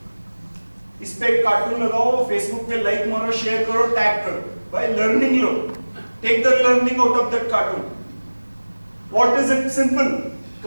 इस पे एक cartoon लगाओ, Facebook पे like मारो, share करो, tag करो. By learning low. Take the learning out of that cartoon. What is it? Simple.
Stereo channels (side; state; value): both; inverted; correlation -1.00